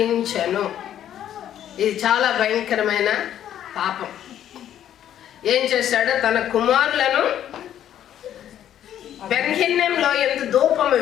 ఇది చాలా భయంకరమైన పాపం. ఏం చేశాడు? తన కుమారులను బెన్హిన్నెంలో ఎంత ధూపము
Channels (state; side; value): quieter; right; 10.8 dB